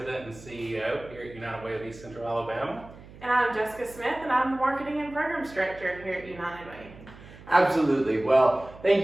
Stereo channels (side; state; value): right; noise; hum, 19 dB below the sound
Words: and CEO here at United Way of East Central Alabama. And I'm Jessica Smith, and I'm the marketing and programs director here at United Way. Absolutely. Well, thank